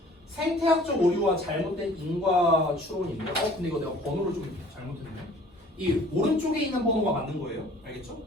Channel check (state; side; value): normal; both; correlation 0.52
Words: 생태학적 오류와 잘못된 인과 추론인데, 근데 이거 내가 번호를 좀 잘못했네. 이 오른쪽에 있는 번호가 맞는 거예요. 알겠죠?